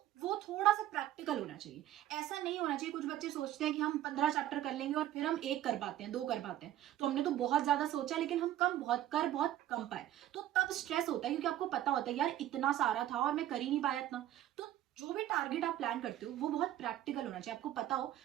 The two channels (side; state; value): left; quieter; 12.8 dB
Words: वो थोड़ा सा प्रैक्टिकल होना चाहिए। ऐसा नहीं होना चाहिए, कुछ बच्चे सोचते हैं कि हम 15 चैप्टर कर लेंगे और फिर हम एक कर पाते हैं, 2 कर पाते हैं, तो हमने तो बहुत ज्यादा सोचा लेकिन हम बहुत कम पाए। तो तब स्ट्रेस होता है क्योंकि आपको पता होता है यार इतना सारा था और मैं कर ही नहीं पाया इतना। तो जो भी टारगेट आप प्लान करते हो वो बहुत प्रैक्टिकल होना चाहिए। आपको पता हो